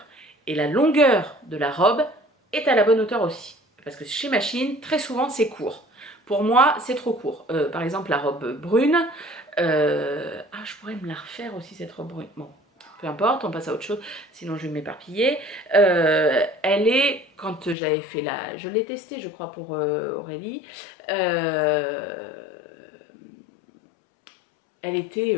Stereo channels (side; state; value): right; drops out; at 17.8 s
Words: et la longueur de la robe est à la bonne hauteur aussi. Parce que chez Machine, très souvent, c'est court. Pour moi, c'est trop court. Par exemple, la robe brune. Je pourrais me la refaire aussi, cette robe brune. Bon, peu importe, on passe à autre chose, sinon je vais m'éparpiller. Elle est, quand j'avais fait la... Je l'ai testée, je crois, pour Aurélie. Elle était